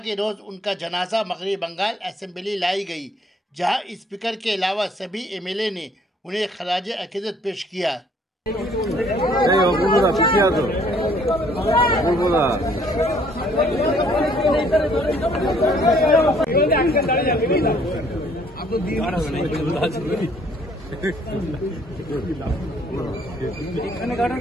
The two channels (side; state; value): both; normal; correlation 0.61